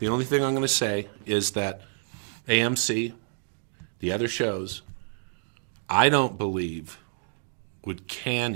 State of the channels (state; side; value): silent; left; digital silence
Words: only thing I'm going to say is that AMC, the other shows, I don't believe would can